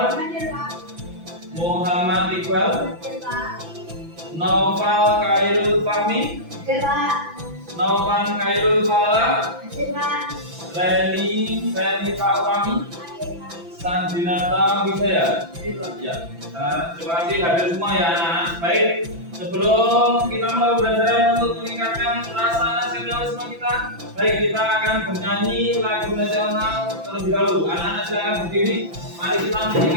Muhammad Iqbal, Noval Khairul Fahmi, Novan Khairul Fala, Leni Taurami, Sandinata Wisaya. Ya, terima kasih hadir semua ya anak-anak. Baik, sebelum kita mulai belajar untuk meningkatkan rasa nasionalisme kita, baik kita akan bernyanyi lagu nasional terlebih dahulu. Anak-anak silakan berdiri. Mari kita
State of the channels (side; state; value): left; late; 5.9 ms